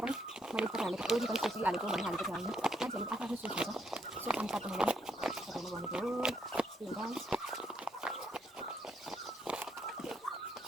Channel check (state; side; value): normal; both; correlation 0.74